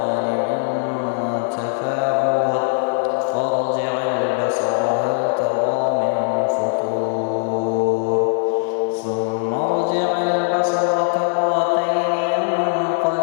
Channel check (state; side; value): silent; right; digital silence